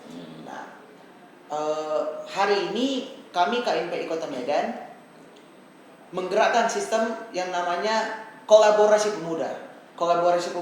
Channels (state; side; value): identical; both; correlation 1.00